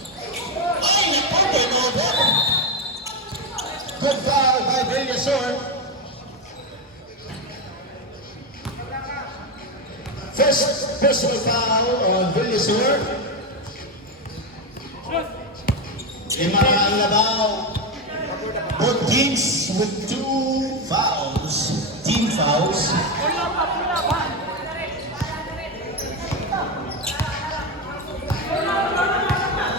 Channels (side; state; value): both; normal; correlation 0.11